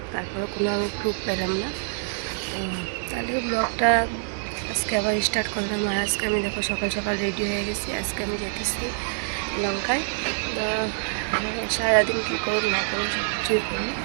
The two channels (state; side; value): silent; left; digital silence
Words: তারপরে কোনো আমি প্রুফ পেলাম না। তাহলে ব্লগটা আজকে আবার স্টার্ট করলাম। আর আজকে আমি দেখো সকাল সকাল রেডি হয়ে গেছি। আজকে আমি যেতেছি লঙ্কায়। সারাদিন কী করুন না করুন সব কিছুই করুন,